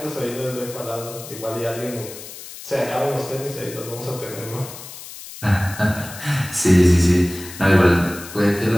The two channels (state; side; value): noise; left; hiss, 14 dB below the sound